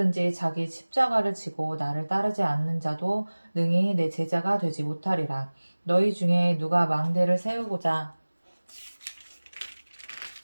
자기 십자가를 지고 나를 따르지 않는 자도 능히 내 제자가 되지 못하리라. 너희 중에 누가 망대를 세우고자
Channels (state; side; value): inverted; both; correlation -1.00